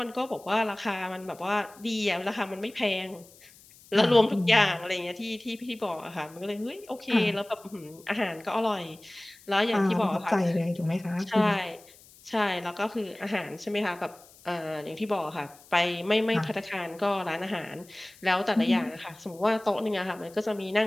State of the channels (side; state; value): left; noise; hiss, 24 dB below the sound